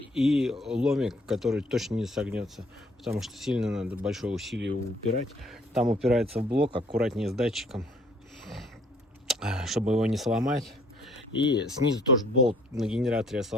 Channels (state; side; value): normal; both; correlation 0.61